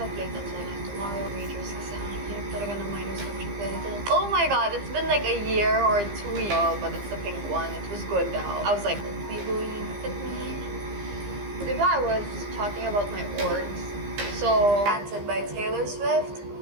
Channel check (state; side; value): late; left; 15 ms